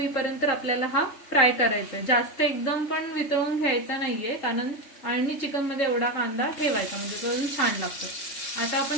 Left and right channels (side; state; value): right; late; 3.8 ms